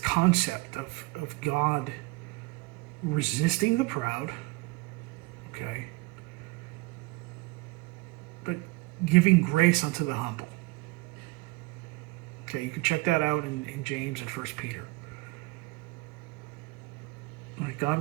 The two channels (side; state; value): left; quieter; 22.7 dB